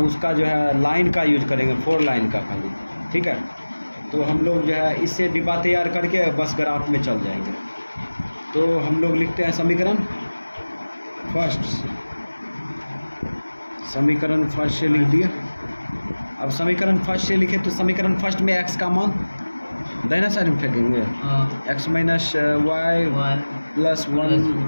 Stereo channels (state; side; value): inverted; both; correlation -1.00